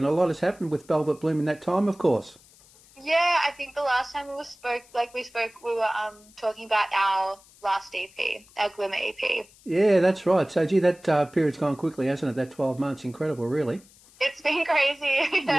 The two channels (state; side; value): noise; left; hiss, 26 dB below the sound